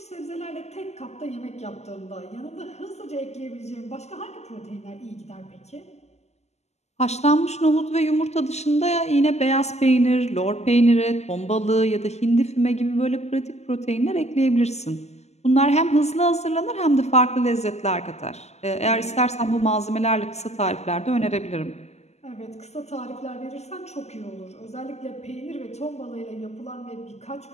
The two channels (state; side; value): late; right; 0.32 ms